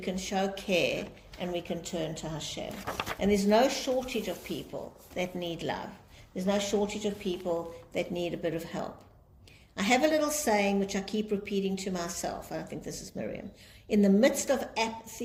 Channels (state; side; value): identical; both; correlation 1.00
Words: show care, and we can turn to Hashem. And there's no shortage of people that need love. There's no shortage of people that need a bit of help. I have a little saying which I keep repeating to myself. I think this is Miriam. In the midst of